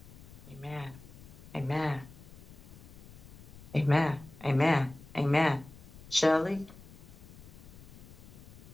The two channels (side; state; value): left; noise; rumble, 18 dB below the sound